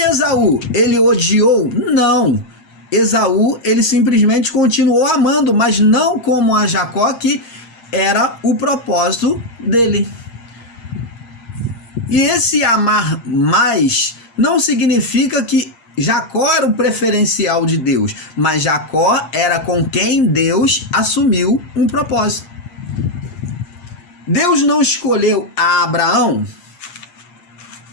ele odiou? Não. Esaú, ele simplesmente continuou amando, mas não como a Jacó, que era o propósito dele. E esse amar mais não significa que Jacó era o preferencial de Deus, mas Jacó era com quem Deus assumiu um propósito. Deus não escolheu a Abraão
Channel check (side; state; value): right; late; 8.5 ms